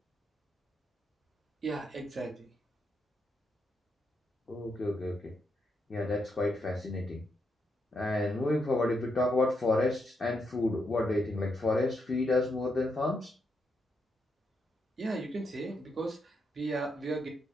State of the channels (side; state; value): both; normal; correlation 0.80